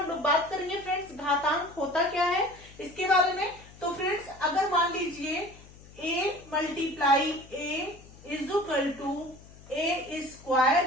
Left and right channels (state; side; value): noise; left; hum, 21 dB below the sound